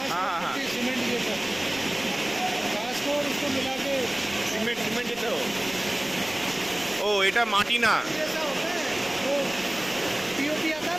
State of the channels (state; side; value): noise; right; rumble, 21 dB below the sound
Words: हाँ, हाँ, हाँ। पट्टी सीमेंट जैसा घास को और उसको मिला के सीमेंट देते हो? ओ এটা মাটি না, जैसा होता है वो पीओपी आता है